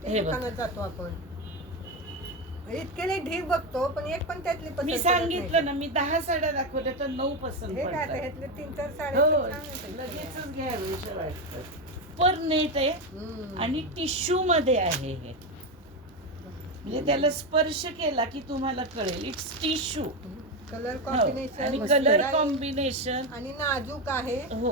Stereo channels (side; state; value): both; normal; correlation 0.13